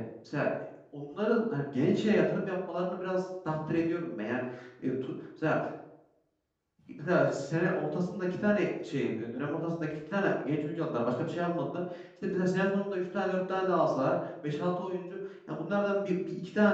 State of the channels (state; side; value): identical; both; correlation 1.00